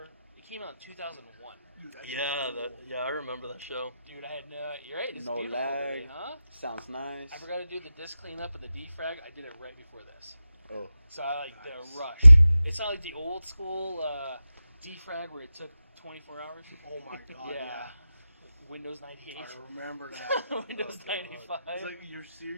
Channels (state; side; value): inverted; both; correlation -0.93